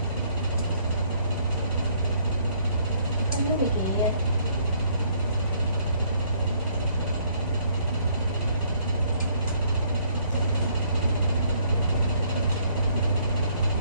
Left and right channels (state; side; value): inverted; both; correlation -0.65